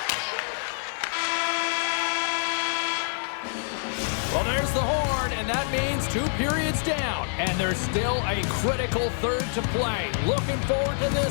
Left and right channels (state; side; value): silent; right; digital silence